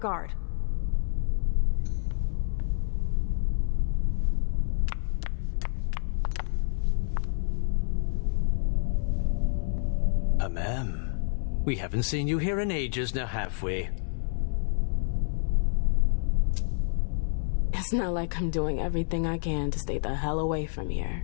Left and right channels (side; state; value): right; silent; 59 dB below the other